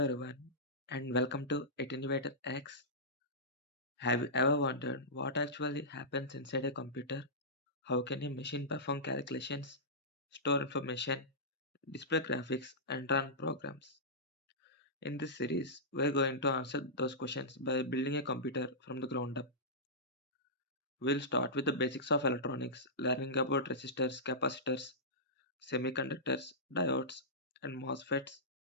everyone and welcome to AttenuatorX. Have you ever wondered what actually happens inside a computer? How can a machine perform calculations, store information, display graphics and run programs? In this series, we're going to answer those questions by building a computer from the ground up. We'll start with the basics of electronics, learning about resistors, capacitors, semiconductors, diodes and MOSFETs.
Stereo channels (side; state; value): both; normal; correlation -0.15